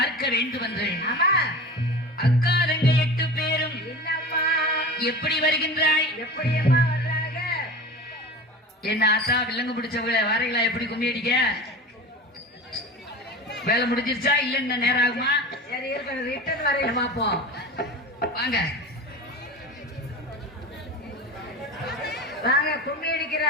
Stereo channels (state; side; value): normal; both; correlation 0.32